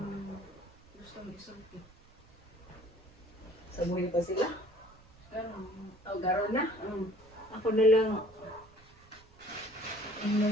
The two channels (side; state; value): right; noise; rumble, 26 dB below the sound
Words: gustong isulti. Sa buhay pa sila? Garon na? Mm. Ako na lang,